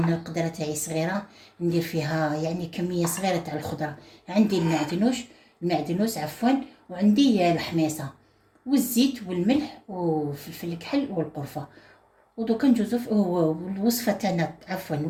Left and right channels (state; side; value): identical; both; correlation 1.00